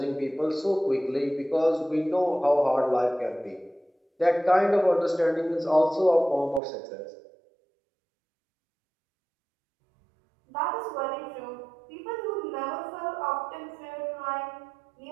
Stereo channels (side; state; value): left; drops out; at 6.6 s